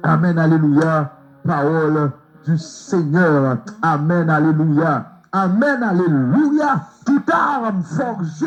Amen, alléluia. Parole du Seigneur. Amen, alléluia. Amen, alléluia. Toute arme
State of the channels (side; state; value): both; identical; correlation 1.00